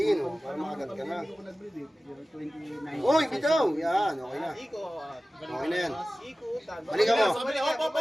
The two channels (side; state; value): both; normal; correlation 0.96